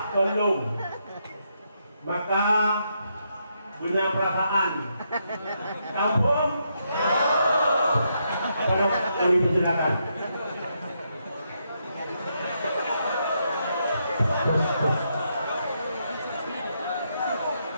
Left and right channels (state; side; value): inverted; both; correlation -0.79